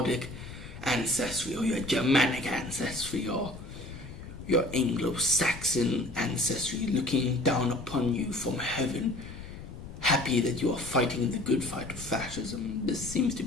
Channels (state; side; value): noise; left; rumble, 13 dB below the sound